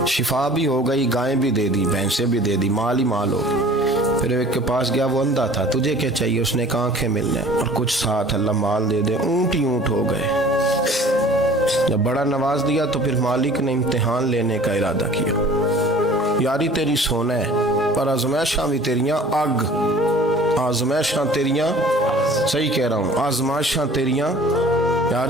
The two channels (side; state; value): both; normal; correlation 0.48